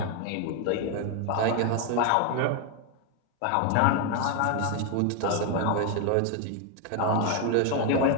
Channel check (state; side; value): different; both; correlation 0.01